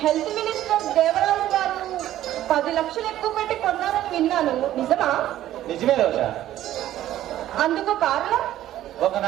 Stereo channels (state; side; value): quieter; left; 13.2 dB